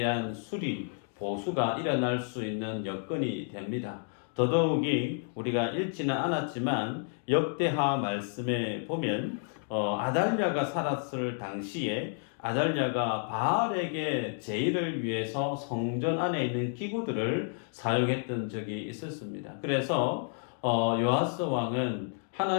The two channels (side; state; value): right; silent; 56 dB below the other